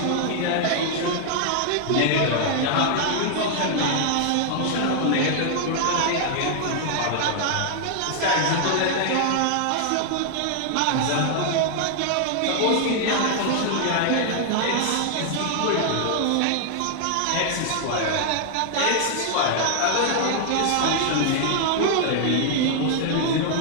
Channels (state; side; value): different; both; correlation 0.00